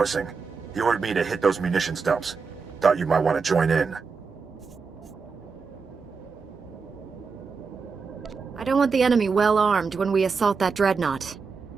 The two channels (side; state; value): left; quieter; 5.1 dB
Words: He ordered me to hit those munitions dumps. Thought you might want to join in. I don't want the enemy well armed when we assault that Dreadnought.